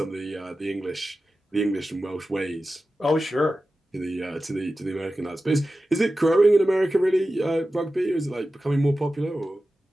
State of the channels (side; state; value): both; normal; correlation 0.94